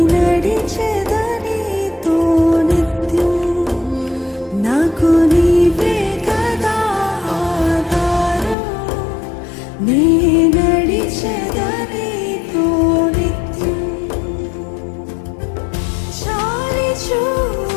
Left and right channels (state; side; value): drops out; right; at 8.6 s